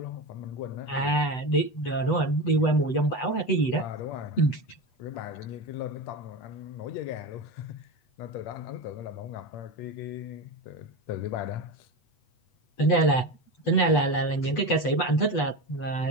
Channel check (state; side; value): late; right; 8.0 ms